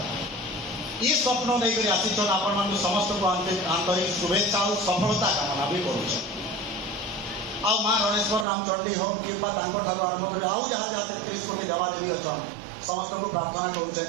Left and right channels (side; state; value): left; drops out; at 8.5 s